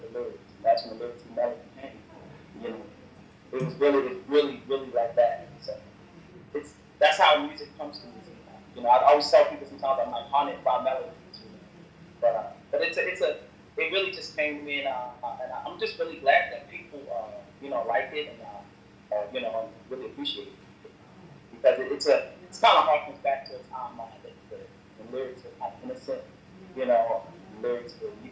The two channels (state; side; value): identical; both; correlation 1.00